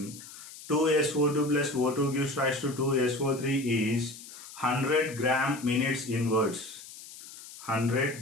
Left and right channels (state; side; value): noise; left; hiss, 16 dB below the sound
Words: 2SO2 plus O2 gives rise to 2SO3 is 100 gram minutes inverse. 100